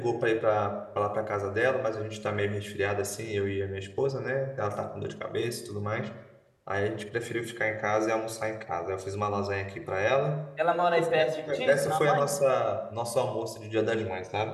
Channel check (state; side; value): identical; both; correlation 1.00